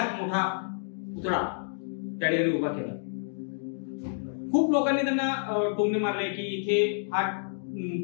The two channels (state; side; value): silent; right; digital silence